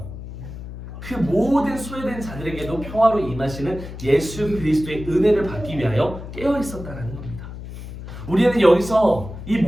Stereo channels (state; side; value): noise; left; hum, 11 dB below the sound